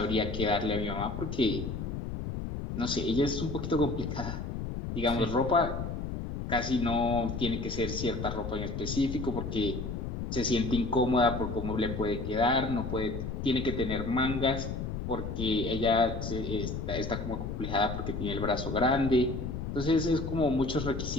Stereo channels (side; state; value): left; noise; rumble, 5 dB below the sound